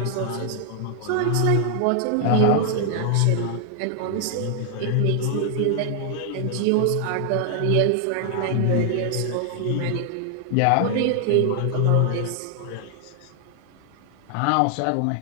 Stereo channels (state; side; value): different; both; correlation 0.00